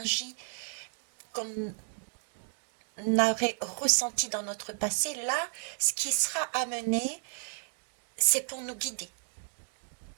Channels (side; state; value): left; silent; digital silence